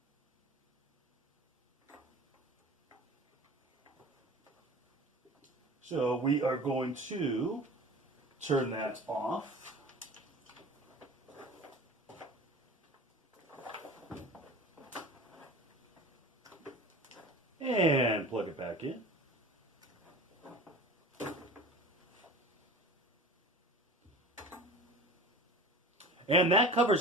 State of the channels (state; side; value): normal; both; correlation 0.37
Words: So we are going to turn that off. And plug it back in. And that